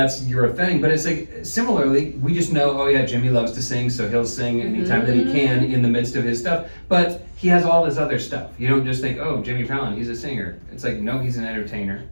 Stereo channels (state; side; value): inverted; both; correlation -1.00